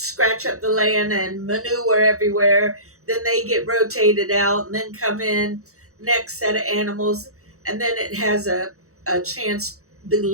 up the land and manure everywhere. Then they get rotated out and then come in next set of animals, and then it has a chance. The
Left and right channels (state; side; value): late; left; 0.64 ms